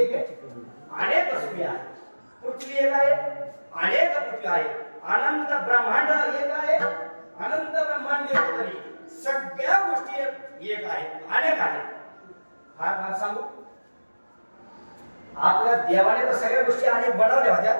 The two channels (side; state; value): both; inverted; correlation -1.00